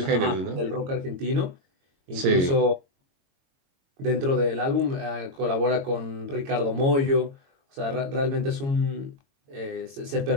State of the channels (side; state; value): left; late; 22 ms